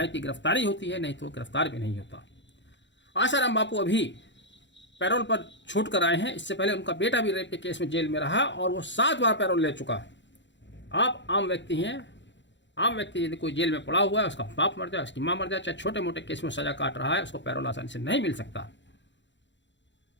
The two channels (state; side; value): late; right; 0.53 ms